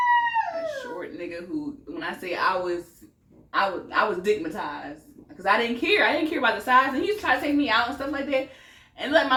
A short nigga who, when I say I was stigmatized. Because I didn't care. I didn't care about the size. And he used to try to take me out and stuff like that. And like my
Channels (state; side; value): identical; both; correlation 1.00